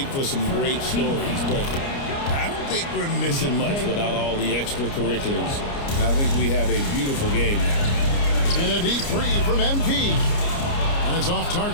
for some great stories, but I don't think we're missing much without all the extracurriculars. And I think we have a beautiful game now. And a deep three from MP. And it's off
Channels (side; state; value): right; late; 29 ms